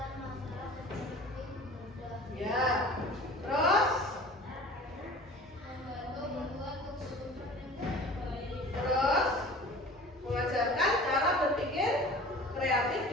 Ya, terus mengajarkan cara berpikir kreatif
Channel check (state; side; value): normal; both; correlation 0.43